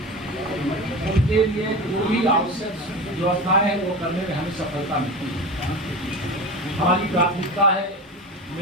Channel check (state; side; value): normal; both; correlation 0.28